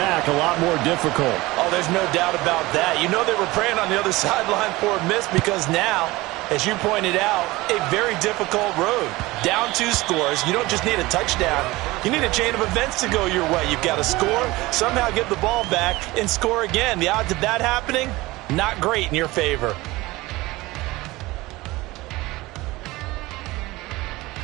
a lot more difficult. Oh, there's no doubt about that. You know they were praying on the other sideline for a miss because now, as you pointed out, a very difficult road. Down 2 scores. You don't just need a touchdown. You need a chain of events to go your way. You've got to score, somehow get the ball back, and score again. The odds of that happening, not great in your favor.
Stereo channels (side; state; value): left; quieter; 20.3 dB